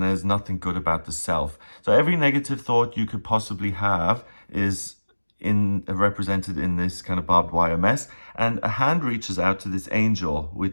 there's nothing good about the self. So every negative thought you could possibly have is represented in this kind of barbed wire mess. And a hand reaches out to this angel,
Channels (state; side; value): inverted; both; correlation -1.00